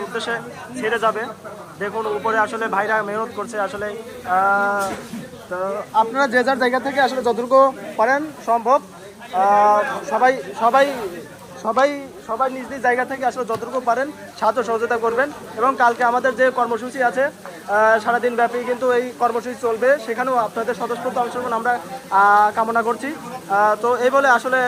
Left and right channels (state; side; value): identical; both; correlation 1.00